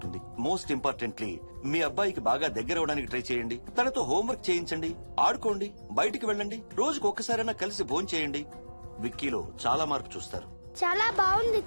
మోస్ట్ ఇంపార్టెంట్లీ మీ అబ్బాయికి బాగా దగ్గర అవడానికి ట్రై చేయండి. తనతో హోంవర్క్ చేయించండి, ఆడుకోండి, బయటికి వెళ్ళండి, రోజుకు ఒక్కసారైనా కలిసి భోజనం చేయండి. విక్కీలో చాలా మార్పు చూస్తారు. చాలా బాగుంది,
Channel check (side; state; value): both; inverted; correlation -1.00